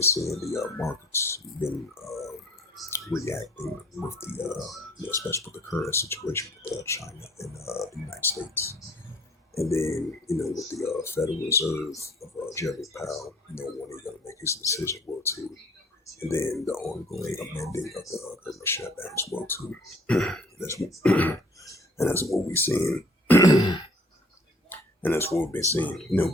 seeing the markets been reacting with especially with the current situation with China and the United States. And then, with the Federal Reserve of Jeremy Powell, when he's going to make his decision, well, too. And then the ongoing amending of the government shutdown as well, too. And that's what we're seeing. And that's what we've been seeing,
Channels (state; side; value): normal; both; correlation 0.55